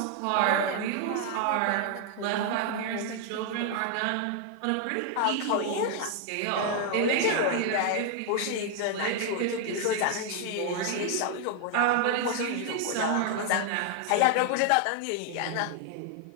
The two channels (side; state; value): both; different; correlation 0.00